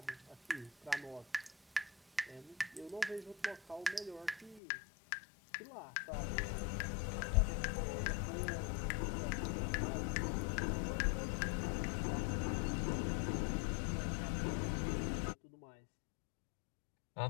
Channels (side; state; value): right; drops out; at 4.6 s